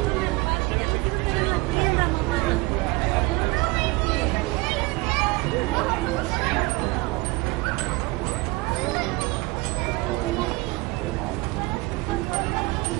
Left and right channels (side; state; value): left; quieter; 23.6 dB